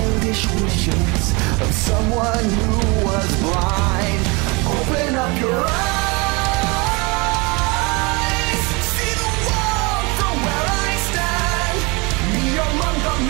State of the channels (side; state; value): left; quieter; 27.6 dB